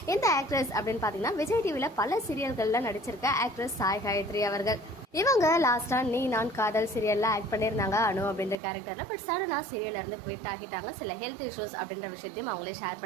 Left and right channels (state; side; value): drops out; left; at 8.6 s